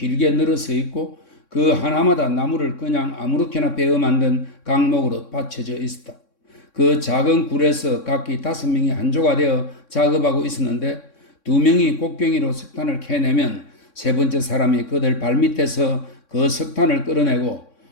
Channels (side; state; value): right; late; 3.6 ms